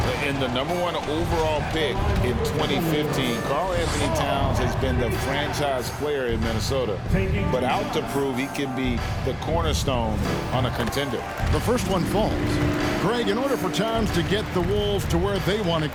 In the #1 overall pick in 2015, Karl-Anthony Towns has been the franchise player in Minnesota, but out to prove he can be the cornerstone on a contender. The first one falls. Greg, in order for Towns to get the Wolves to where they want to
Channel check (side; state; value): both; identical; correlation 1.00